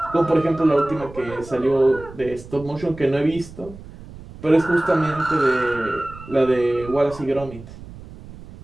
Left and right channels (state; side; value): noise; right; rumble, 17 dB below the sound